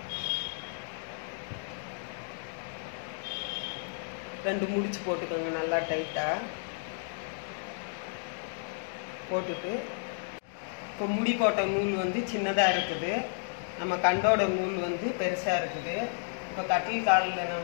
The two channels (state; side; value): silent; right; digital silence